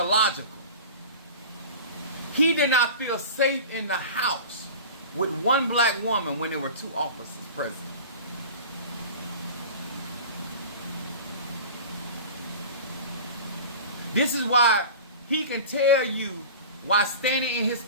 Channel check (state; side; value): inverted; both; correlation -0.36